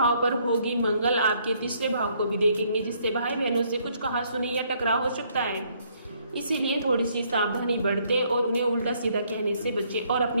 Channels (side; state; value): both; inverted; correlation -0.68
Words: पर होगी। मंगल आपके 3 भाव को भी देखेंगे, जिससे भाई बहनों से कुछ कहासुनी या टकराव हो सकता है। इसीलिए थोड़ी सी सावधानी बरतें और उन्हें उल्टा सीधा कहने से बचें और